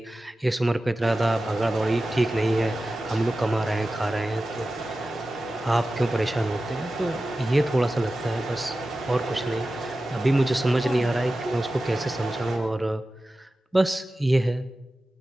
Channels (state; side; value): normal; both; correlation 0.95